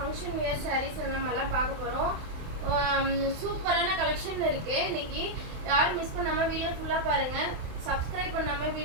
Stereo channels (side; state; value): left; late; 27 ms